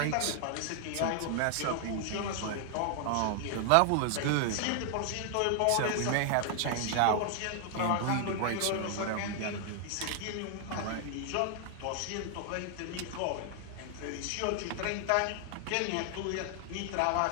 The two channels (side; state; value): both; different; correlation 0.00